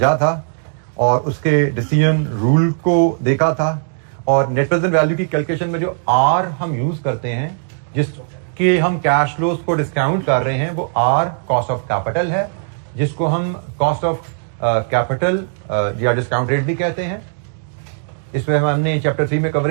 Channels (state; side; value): silent; left; digital silence